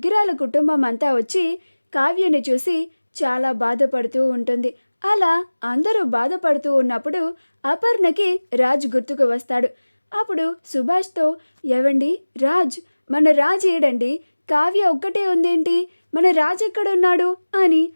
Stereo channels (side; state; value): both; inverted; correlation -1.00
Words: కుటుంబం అంతా వచ్చి కావ్యని చూసి చాలా బాధపడుతూ ఉంటుంది. అలా అందరూ బాధపడుతూ ఉన్నప్పుడు అపర్ణకి రాజ్ గుర్తుకు వస్తాడు. అప్పుడు సుభాష్తో, ఏవండి రాజ్, మన రాజ్ ఏడండి, కావ్య ఒక్కటే ఉందేంటి, మన రాజ్ ఎక్కడున్నాడు అని